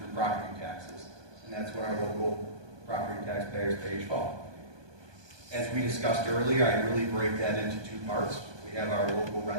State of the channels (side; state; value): left; late; 1.2 ms